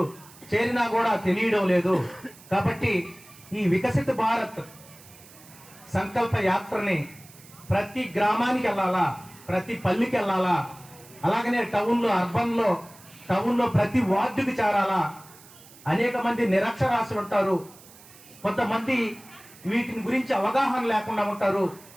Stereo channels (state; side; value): noise; right; hiss, 22 dB below the sound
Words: చేరినా కూడా తెలియడం లేదు. కాబట్టి ఈ వికసిత భారత్ సంకల్ప యాత్రని ప్రతి గ్రామానికి వెళ్ళాలా, ప్రతి పల్లికి వెళ్ళాలా, అలాగనే టౌన్లో ప్రతి వార్డుకి చేరాలా. అనేక మంది నిరక్షరాస్యులు ఉంటారు, కొంతమంది వీటిని గురించి అవగాహన లేకుండా ఉంటారు.